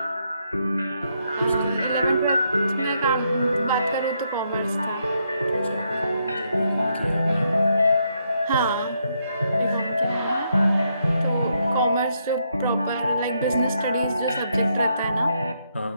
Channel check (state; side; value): inverted; both; correlation -0.77